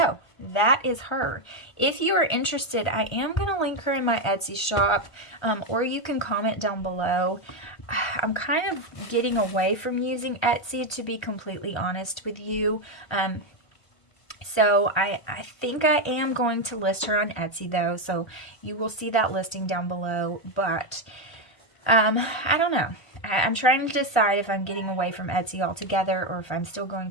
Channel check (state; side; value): late; right; 1.5 ms